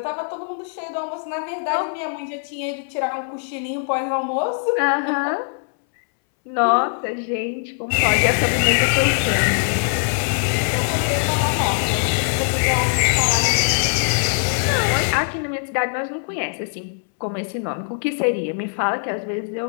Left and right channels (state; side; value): silent; right; 65 dB below the other